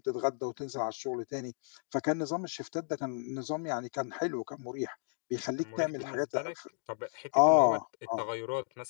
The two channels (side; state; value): right; silent; digital silence